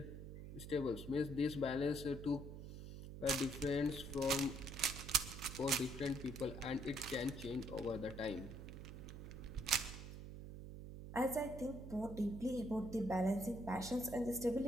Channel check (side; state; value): right; noise; hum, 10 dB below the sound